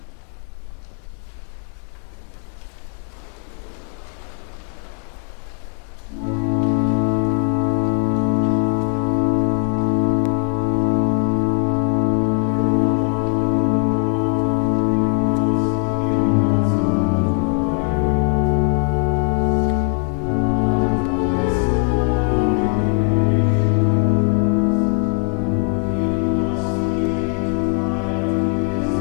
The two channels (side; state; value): right; quieter; 39.8 dB